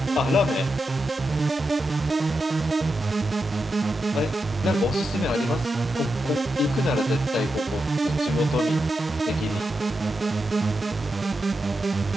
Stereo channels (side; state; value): both; normal; correlation 0.88